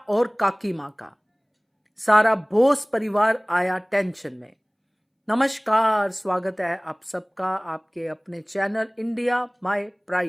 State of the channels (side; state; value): both; identical; correlation 1.00